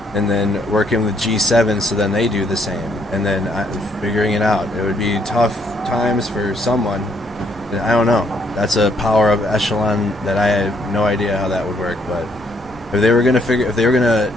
and then working with G7 so then they do the same, and then figuring it out. It would be tough times for someone. I don't know. That's a power of echelon that I have no idea how that would work, but if they were going to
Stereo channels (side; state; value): both; normal; correlation 0.70